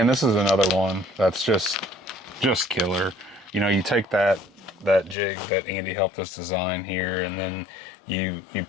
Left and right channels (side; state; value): right; drops out; at 5.2 s